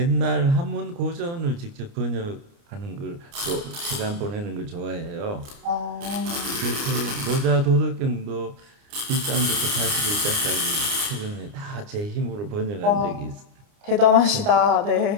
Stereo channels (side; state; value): left; late; 29 ms